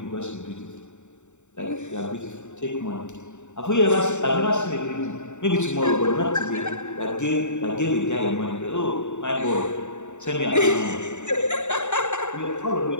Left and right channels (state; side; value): late; right; 0.84 ms